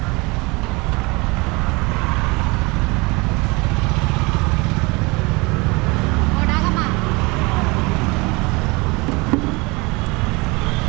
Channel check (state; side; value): quieter; left; 26.0 dB